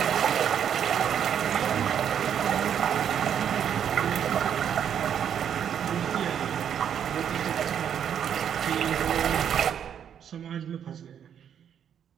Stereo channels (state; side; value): quieter; left; 8.8 dB